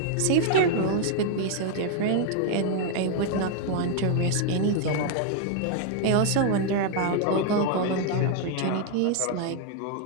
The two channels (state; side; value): different; both; correlation 0.00